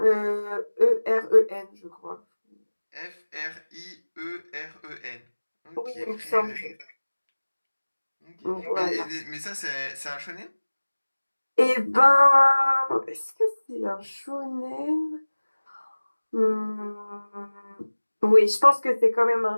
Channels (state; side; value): inverted; both; correlation -1.00